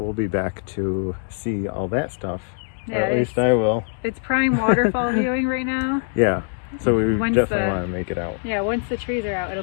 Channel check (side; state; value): right; silent; digital silence